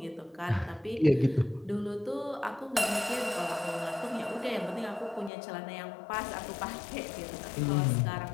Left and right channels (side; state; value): right; drops out; at 5.3 s